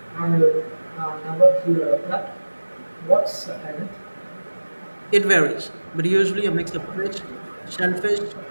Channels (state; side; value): inverted; both; correlation -1.00